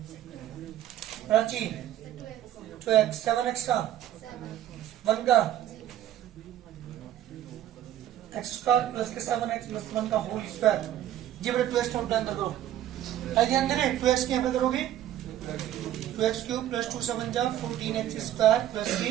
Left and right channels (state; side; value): quieter; left; 12.1 dB